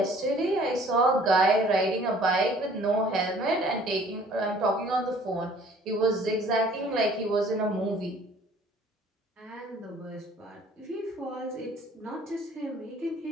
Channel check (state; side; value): normal; both; correlation 0.54